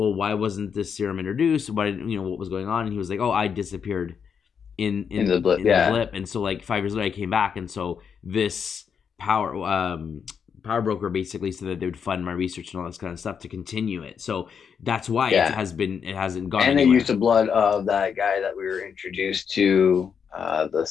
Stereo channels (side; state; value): right; quieter; 6.9 dB